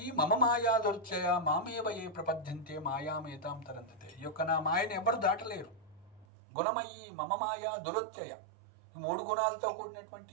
మమ మాయా దుర్చయ మామేవ ఏ ప్రపద్యంతే మాయామేతాం తరంతతే. ఈ యొక్క నా మాయను ఎవరు దాటలేరు. గుణమయీ మమ మాయా దురత్యయ, ఈ 3 గుణాలతో కూడినటువంటి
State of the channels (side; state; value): left; drops out; at 6.2 s